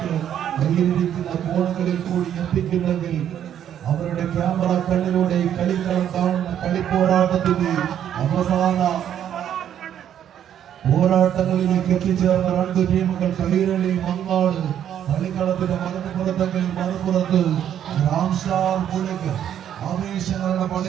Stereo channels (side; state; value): left; quieter; 10.0 dB